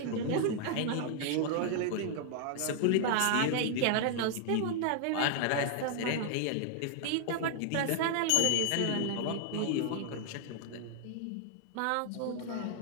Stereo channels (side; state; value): both; different; correlation 0.00